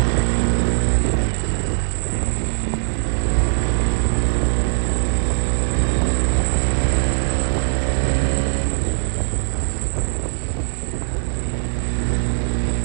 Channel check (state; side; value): silent; left; 65 dB below the other